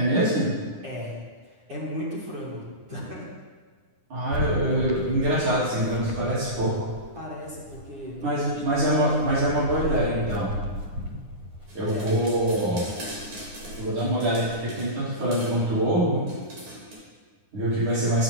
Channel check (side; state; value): left; late; 9.9 ms